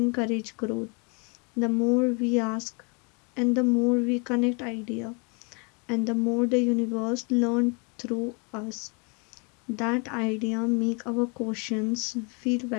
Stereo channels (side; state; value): right; quieter; 33.6 dB